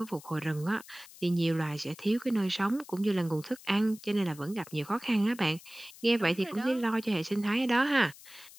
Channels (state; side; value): noise; left; hiss, 20 dB below the sound